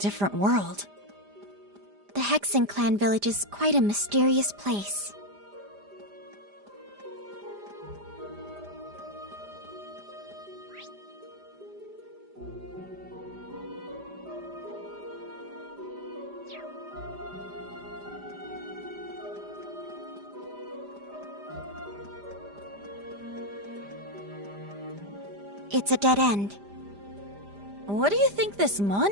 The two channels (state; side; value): late; left; 5.0 ms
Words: world. The Hexen clan village is quite a mysterious place. It's a dead end. What do you think this